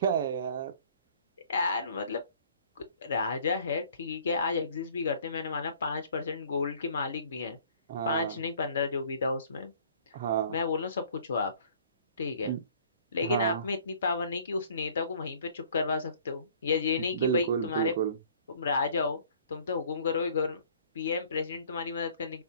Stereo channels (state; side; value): inverted; both; correlation -0.54